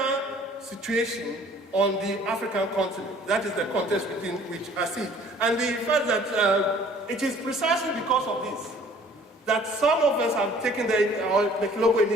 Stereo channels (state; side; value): normal; both; correlation 0.54